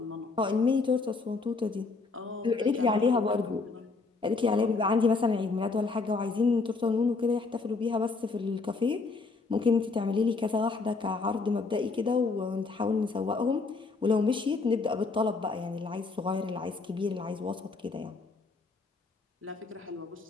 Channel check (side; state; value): right; quieter; 4.1 dB